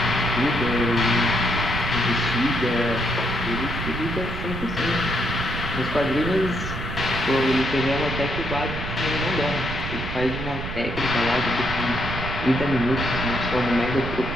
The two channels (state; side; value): noise; right; rumble, 7 dB below the sound